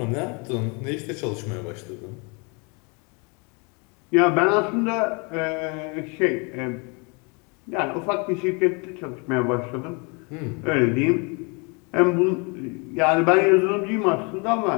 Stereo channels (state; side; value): quieter; right; 31.7 dB